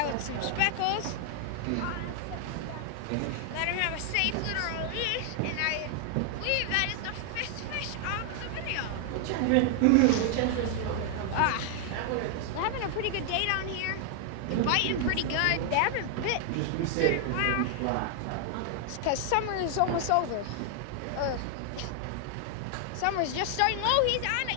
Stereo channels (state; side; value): different; both; correlation 0.00